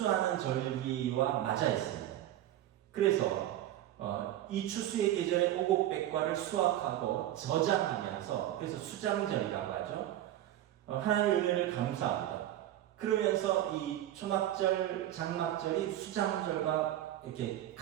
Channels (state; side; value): quieter; left; 13.0 dB